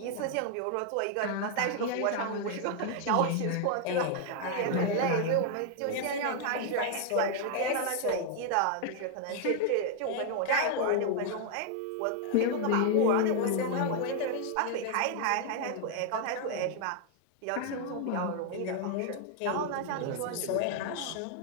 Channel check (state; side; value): different; both; correlation 0.00